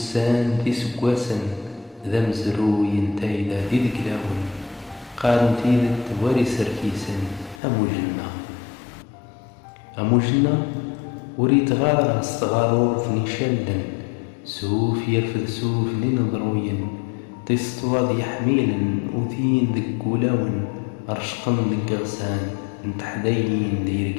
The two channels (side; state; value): right; drops out; at 7.6 s